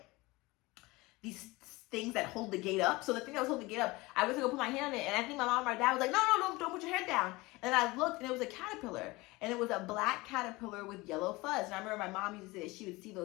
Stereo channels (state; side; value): quieter; right; 22.1 dB